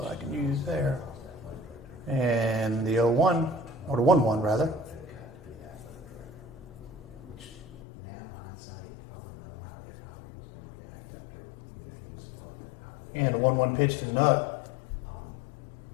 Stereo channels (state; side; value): drops out; right; at 7.8 s